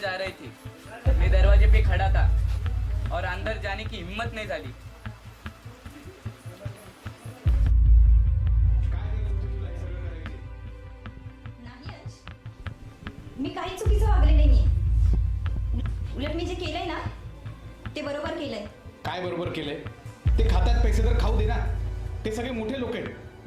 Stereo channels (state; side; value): identical; both; correlation 1.00